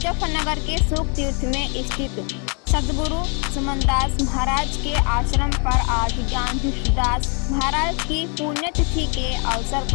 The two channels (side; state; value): right; quieter; 38.2 dB